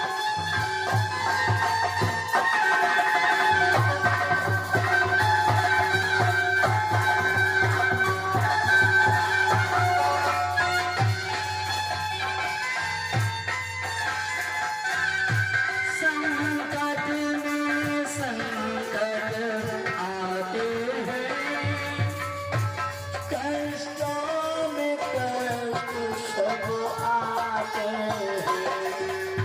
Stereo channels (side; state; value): both; identical; correlation 1.00